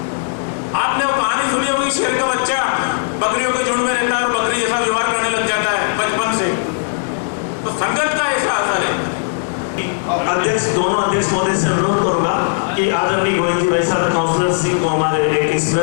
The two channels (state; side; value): silent; right; digital silence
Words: आपने वो कहानी सुनी होगी, शेर का बच्चा बकरियों के झुंड में रहता है और बकरी जैसा व्यवहार करने लग जाता है बचपन से। तो संगत का ऐसा असर है। अध्यक्ष, दोनों अध्यक्ष महोदय से अनुरोध करूंगा कि आदरणीय गोविंद जी भाई साहब काउंसलर सिंह को हमारे एक